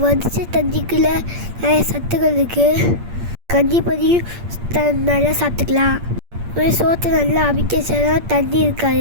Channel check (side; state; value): left; late; 8.6 ms